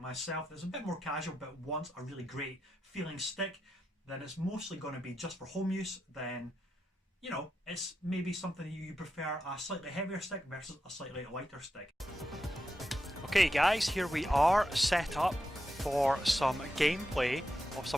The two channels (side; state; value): both; normal; correlation 0.87